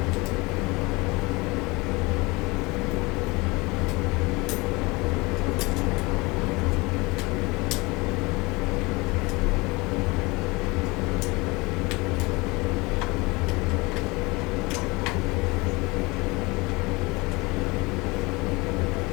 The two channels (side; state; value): right; quieter; 24.7 dB